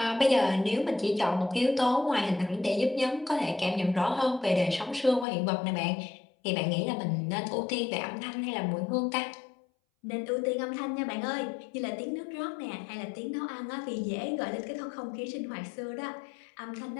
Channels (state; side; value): drops out; right; at 5.2 s